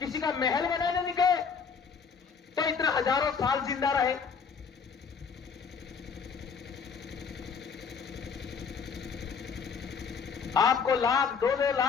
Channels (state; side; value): quieter; right; 6.0 dB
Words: का महल बनाने नहीं गए, तो इतना हजारों साल जिंदा रहे। आपको लाख, 2-2